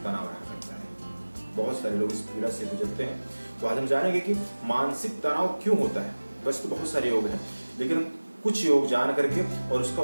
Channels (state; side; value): inverted; both; correlation -1.00